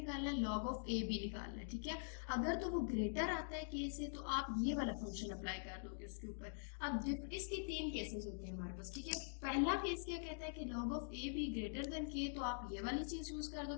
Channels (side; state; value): right; silent; digital silence